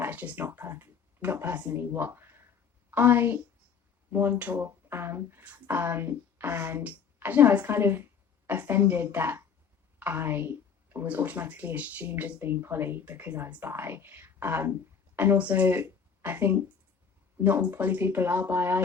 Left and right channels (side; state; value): right; quieter; 6.6 dB